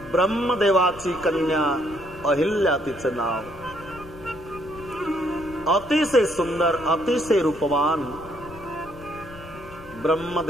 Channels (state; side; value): noise; left; rumble, 18 dB below the sound